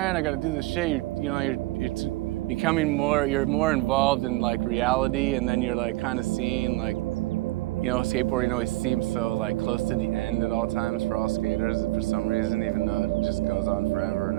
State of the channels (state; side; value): quieter; left; 19.6 dB